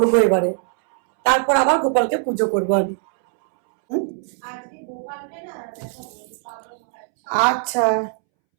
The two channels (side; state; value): left; silent; 65 dB below the other